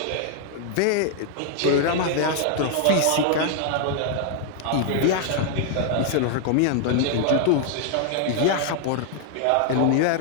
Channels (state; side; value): different; both; correlation 0.00